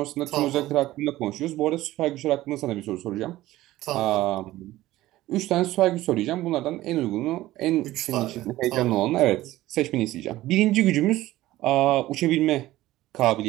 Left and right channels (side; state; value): left; quieter; 16.2 dB